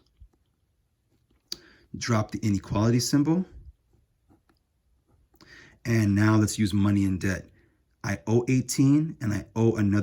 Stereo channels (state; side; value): identical; both; correlation 1.00